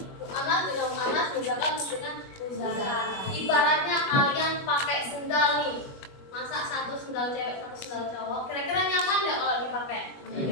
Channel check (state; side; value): late; right; 21 ms